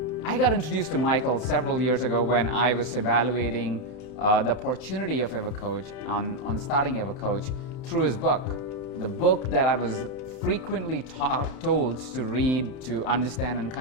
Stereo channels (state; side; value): late; right; 31 ms